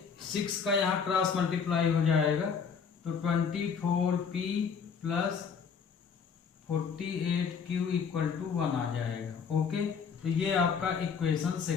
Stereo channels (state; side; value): quieter; right; 6.3 dB